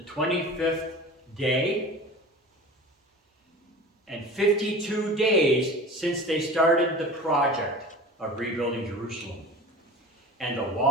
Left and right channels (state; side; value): normal; both; correlation 0.37